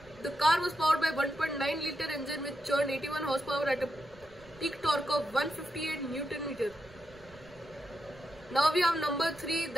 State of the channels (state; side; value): noise; right; rumble, 25 dB below the sound